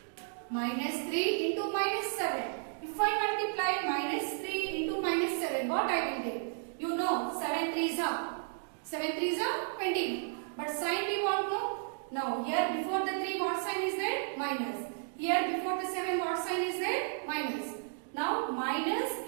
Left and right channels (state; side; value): silent; left; digital silence